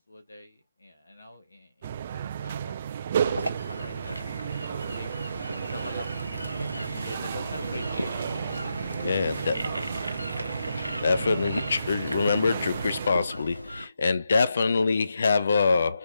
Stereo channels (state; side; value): inverted; both; correlation -0.83